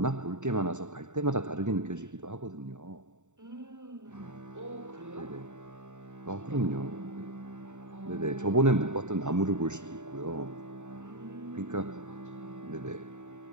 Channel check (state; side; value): late; left; 0.84 ms